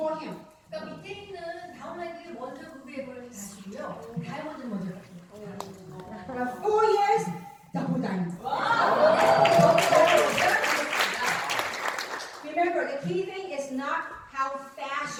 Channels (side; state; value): both; identical; correlation 1.00